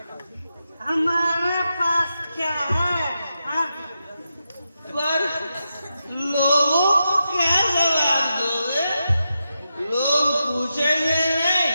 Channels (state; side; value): inverted; both; correlation -0.87